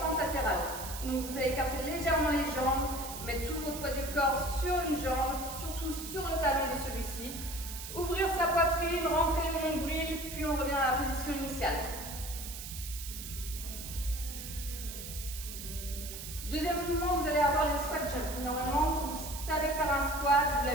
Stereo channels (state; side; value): noise; right; hiss, 9 dB below the sound